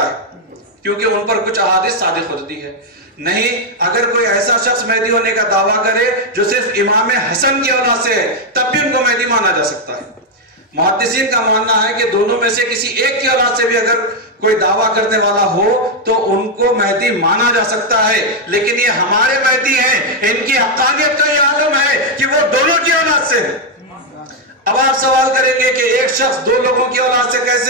ہے کیونکہ ان پر کچھ احادیث صادق ہوتی ہے. نہیں، اگر کوئی ایسا شخص مہدی ہونے کا دعویٰ کرے جو صرف امام حسن کی اولاد سے ہے تب بھی ان کو مہدی مانا جا سکتا ہے. محدثین کا ماننا ہے کہ دونوں میں سے کسی ایک کی اولاد سے بھی اگر کوئی دعویٰ کرنے والا ہو تو ان کو مہدی مانا جا سکتا ہے، لیکن یہ ہمارے مہدی ہیں، ان کی حقانیت کا یہ عالم ہے کہ وہ دونوں کی اولاد سے ہے. اب آپ سوال کریں گے کہ ایک شخص دو لوگوں کی اولاد سے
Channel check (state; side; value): normal; both; correlation 0.01